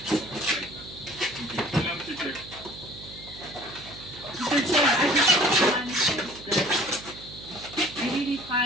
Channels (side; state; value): right; noise; hum, 17 dB below the sound